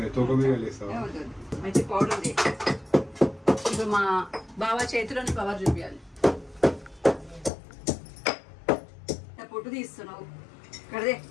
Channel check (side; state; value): right; drops out; at 7.5 s